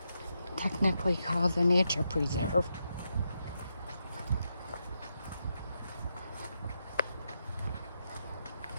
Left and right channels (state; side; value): inverted; both; correlation -0.83